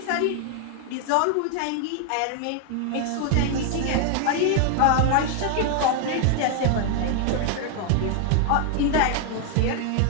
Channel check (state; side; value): different; both; correlation 0.00